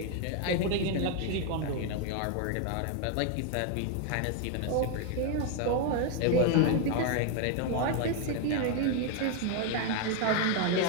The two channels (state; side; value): different; both; correlation 0.01